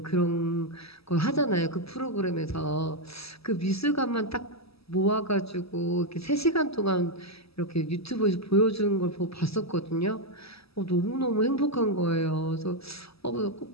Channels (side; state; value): right; late; 0.77 ms